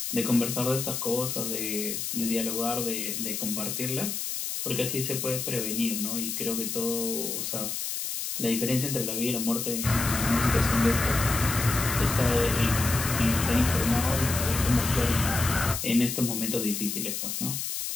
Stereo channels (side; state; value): left; noise; hiss, 3 dB below the sound